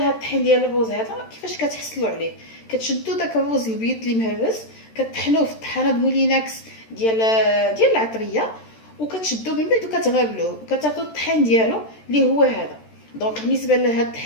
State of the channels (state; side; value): late; right; 13 ms